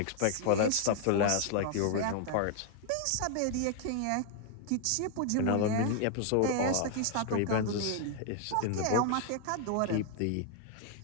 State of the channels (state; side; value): different; both; correlation 0.00